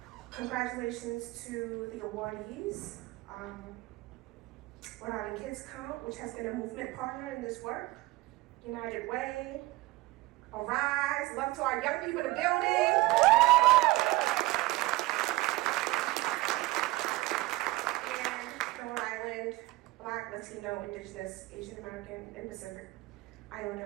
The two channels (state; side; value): quieter; left; 20.2 dB